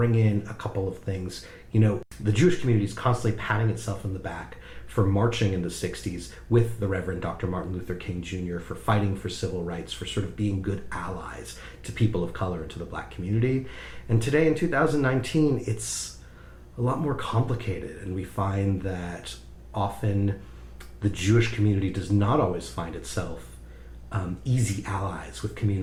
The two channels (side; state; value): both; identical; correlation 1.00